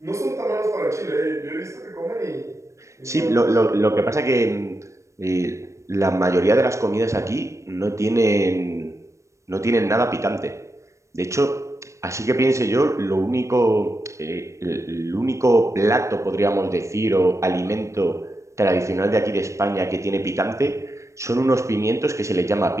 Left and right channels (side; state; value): left; late; 0.15 ms